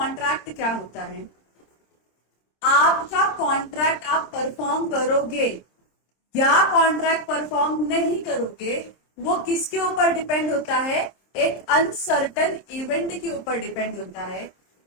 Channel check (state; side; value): late; right; 26 ms